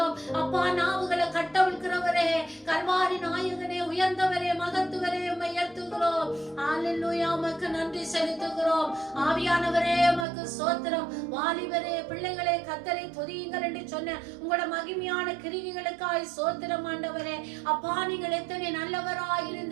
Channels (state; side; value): drops out; left; at 10.2 s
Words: அப்பா. நாவுகளை கட்டவிழ்க்கிறவரே கல்வாரி நாயகனே உயர்ந்தவரே மகத்துவரே உம்மை உயர்த்துகிறோம். ஹalleluya உமக்கு நன்றி செலுத்துகிறோம். ஆவியானவரே உமக்கு ஸ்தோத்திரம். வாலிபரே பிள்ளைகளே கர்த்தரை துதியுங்கள் என்று சொன்ன உங்களோட மகிமையான கிரியைகளுக்காய் ஸ்தோத்திரம் ஆண்டவரே. அப்பா நீங்கள் எத்தனை நல்லவராய்